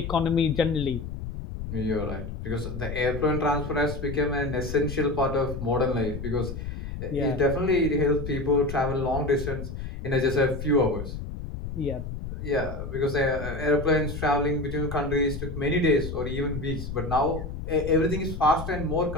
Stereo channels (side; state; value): left; noise; rumble, 7 dB below the sound